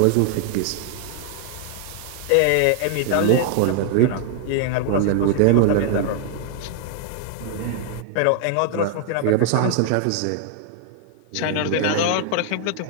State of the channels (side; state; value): both; different; correlation 0.00